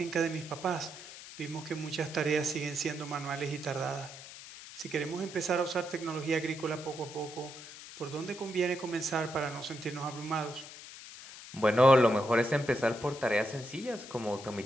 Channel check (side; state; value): left; noise; hiss, 14 dB below the sound